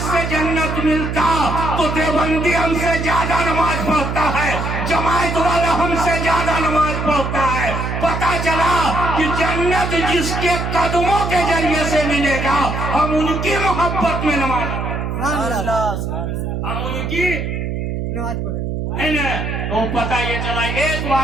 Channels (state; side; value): noise; right; hum, 3 dB below the sound